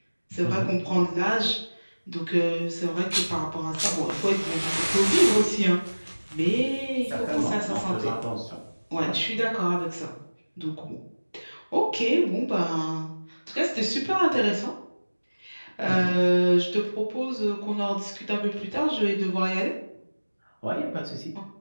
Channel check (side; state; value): both; inverted; correlation -1.00